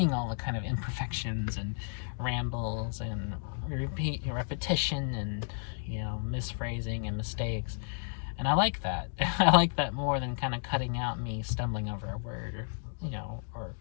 all the kind of imperfections and rambles and repetition and, you know, misphrasing and mistakes. And I like that. I like that more than kind of cutting out me stumbling over a word, or, you know, or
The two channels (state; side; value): silent; right; digital silence